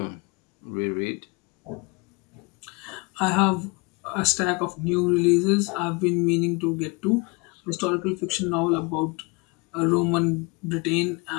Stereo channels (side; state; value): right; quieter; 28.9 dB